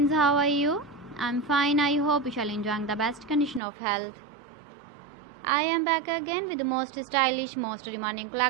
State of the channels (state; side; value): drops out; left; at 3.6 s